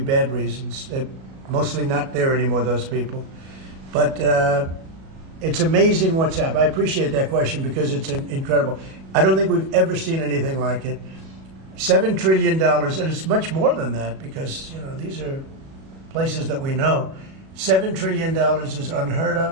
reasons. They're mostly not there anymore, those people. But it's amazing what's happened. I appreciate that question because it's incredible. I don't think we've ever seen anything like it. $7 trillion, and it's much more than that because these are places that we know. $7 trillion is unheard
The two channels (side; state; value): left; late; 37 ms